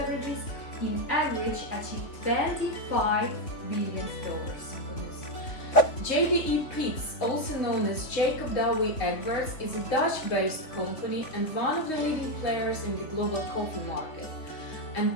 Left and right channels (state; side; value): late; right; 3.2 ms